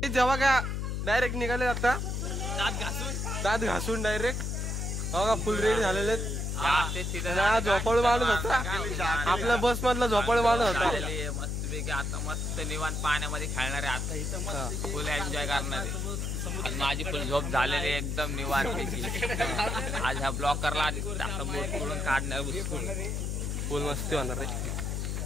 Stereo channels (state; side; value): noise; left; hum, 1 dB below the sound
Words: जेव्हा का डायरेक्ट निघाले आता दात घासून डायरेक्ट. बघा फुल रेडी झालेले. झोपाळू माणूस होता आपल्या बस मधला, झोपाळू माणूस होता. मस्तपैकी आता मस्त निवांत पाण्यामध्ये खेळणार आहे. आता इथं मस्त फुल एन्जॉय करणार आहे. माझी फुल झोप झालेली एकदम निवांतपैकी. आज हा ब्लॉग करला आणि बोट करून काढणार फुल मस्ती होणार रे